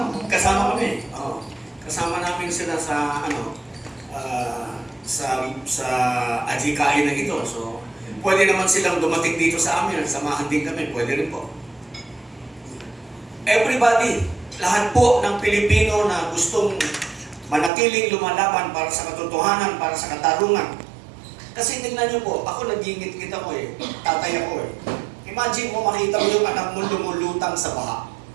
kasama kami. Kasama namin sila sa sa adhikain na ito. So, pwede naman silang dumating dito sa amin, samahan din kami, pwede rin po. Everybody, lahat po ng Pilipino na gustong manatiling lumalaban para sa katotohanan, para sa katarungan. Kasi tingnan niyo po, ako nagingit-ngit ako tatay ako Imagine mo makita mo yung anak mo lumulutang sa baha.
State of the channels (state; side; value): drops out; left; at 17.7 s